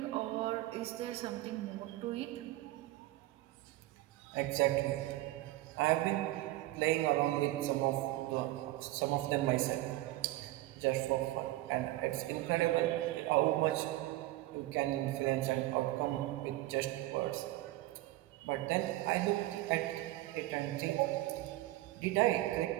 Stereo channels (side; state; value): left; quieter; 17.2 dB